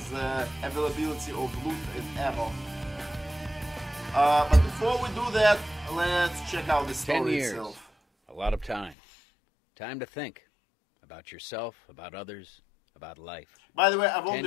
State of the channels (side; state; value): right; drops out; at 9.0 s